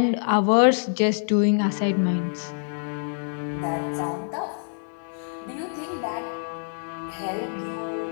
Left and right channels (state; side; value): silent; right; 61 dB below the other